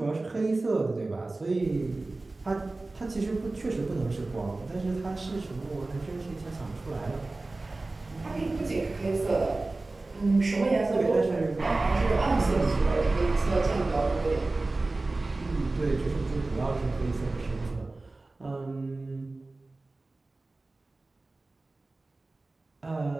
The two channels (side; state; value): left; quieter; 3.2 dB